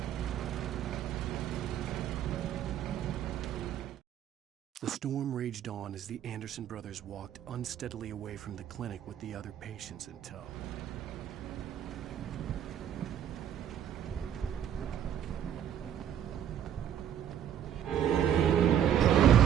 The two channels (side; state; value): left; quieter; 9.9 dB